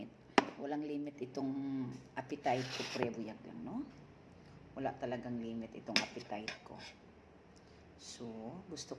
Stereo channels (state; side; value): identical; both; correlation 1.00